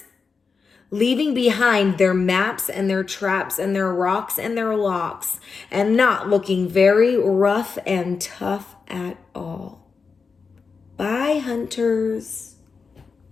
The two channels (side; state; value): right; quieter; 5.1 dB